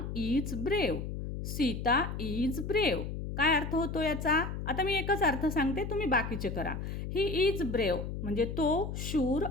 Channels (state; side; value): noise; left; hum, 5 dB below the sound